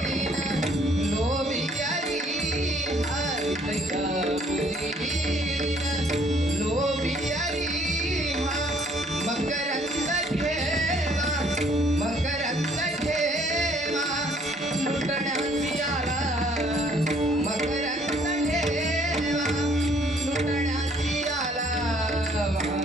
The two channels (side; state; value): both; normal; correlation 0.62